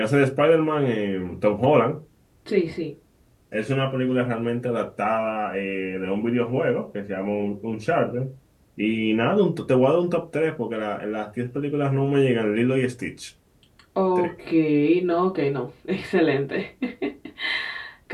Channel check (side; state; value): both; identical; correlation 1.00